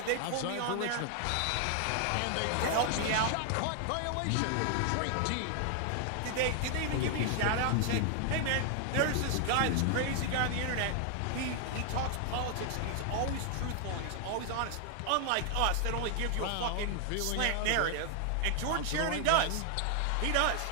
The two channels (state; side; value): different; both; correlation 0.00